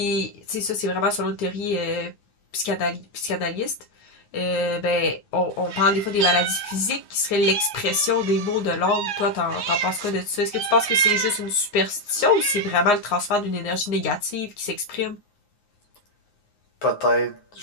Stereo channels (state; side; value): late; right; 9.6 ms